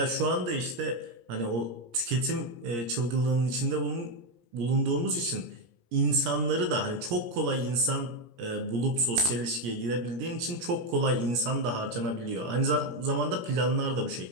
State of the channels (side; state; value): left; late; 17 ms